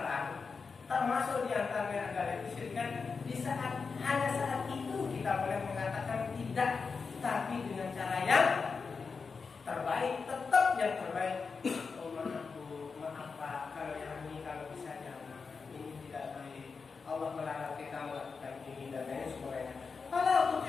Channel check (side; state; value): right; quieter; 5.0 dB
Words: termasuk di antaranya adalah kesyirikan, di saat itu kita boleh mengatakan tidak, tapi dengan cara yang terbaik, tetap yang terbaik. Oh maaf Pak, kalau yang ini kalau bisa jangan, ini tidak baik. Allah melarang kita melakukan ini dan lain sebagainya. Kalau